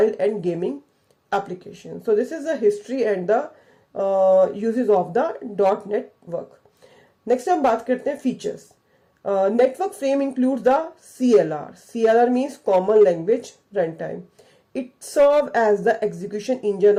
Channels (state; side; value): identical; both; correlation 1.00